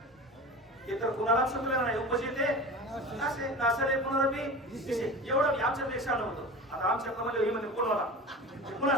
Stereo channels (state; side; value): normal; both; correlation 0.33